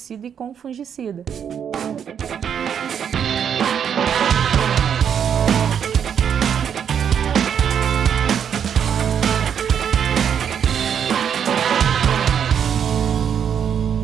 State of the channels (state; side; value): quieter; left; 8.1 dB